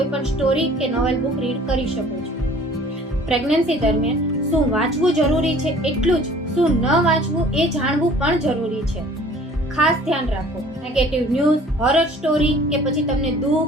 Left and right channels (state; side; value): normal; both; correlation 0.51